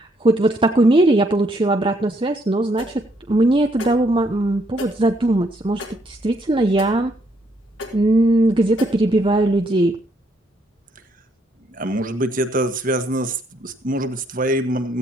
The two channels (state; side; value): normal; both; correlation 0.71